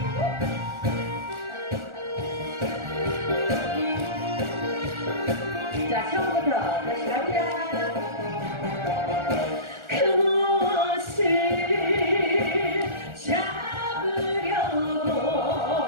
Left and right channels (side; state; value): left; late; 1.4 ms